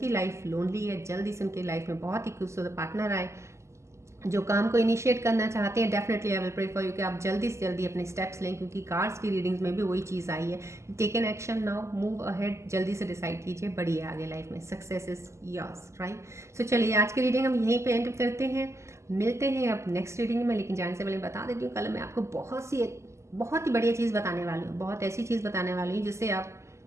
लाइफ लोनली है, जल्दी से उनकी लाइफ में बहुत ही खूबसूरत पार्टनर आए। जो काम को इनिशिएट करना चाहते हैं, definitely I will pray for you कि आप जल्दी से जल्दी अपने स्टेप्स लें, क्योंकि कार्ड्स की रीडिंग्स में भी वही चीज़ आई है। Take an action now, move ahead, जल्दी से डिसाइड कीजिए, बढ़िए आगे लाइफ में, success is yours, right. So चलिए आज की रीडिंग हम यहीं पे एंड करते हैं, मिलते हैं अब नेक्स्ट रीडिंग में। लेकिन जाने से पहले बता देती हूँ, कल मैं आपको बहुत ही बढ़िया चीज़ बताने वाली हूँ, बहुत ऐसी चीज़ बताने वाली हूँ जिससे आप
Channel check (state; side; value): late; left; 0.13 ms